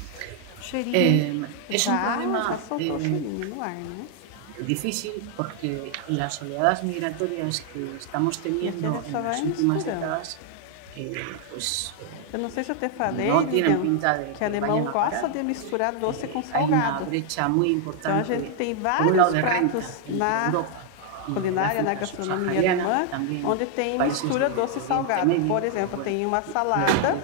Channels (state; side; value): different; both; correlation 0.00